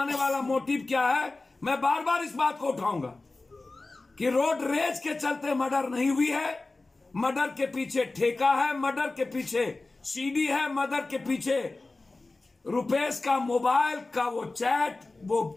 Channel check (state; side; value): quieter; right; 3.3 dB